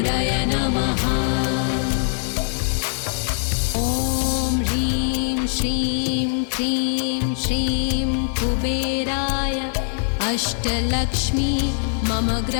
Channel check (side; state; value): right; silent; 64 dB below the other